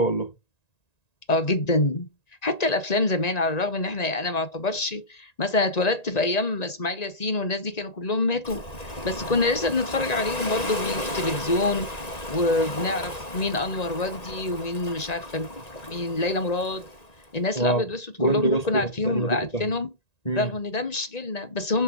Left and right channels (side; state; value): right; late; 1.9 ms